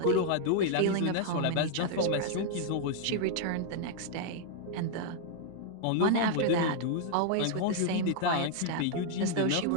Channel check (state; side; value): different; both; correlation 0.00